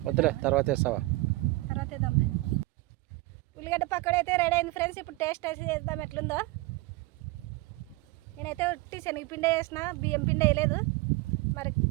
వద్దులే తర్వాత వేస్తావా. తర్వాత వేద్దాంలే. ఉల్లిగడ్డ పకోడీ అయితే రెడీ అయింది ఫ్రెండ్స్. ఇప్పుడు టేస్ట్ వేసి చేద్దాం ఎట్లుందో. నేనైతే ఉట్టి శనగపిండి వేసిన, బియ్యం పిండి వేయలేదు. మరి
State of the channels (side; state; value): left; quieter; 21.2 dB